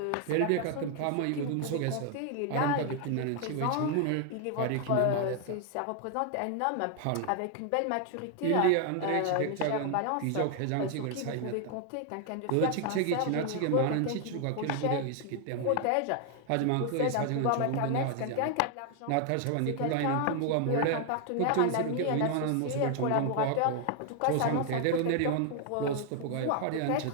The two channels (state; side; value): different; both; correlation 0.00